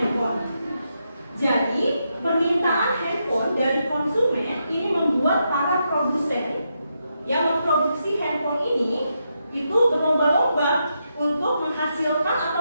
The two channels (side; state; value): both; inverted; correlation -0.83